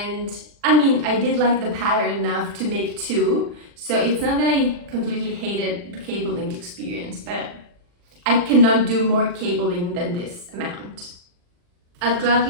I mean, I did like the pattern enough to make two, so it's not that I completely hated the cabling experience, but I cannot do more cabling than this amount. I'll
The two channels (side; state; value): left; late; 40 ms